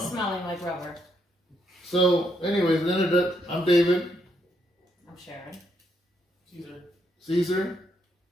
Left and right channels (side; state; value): both; normal; correlation 0.76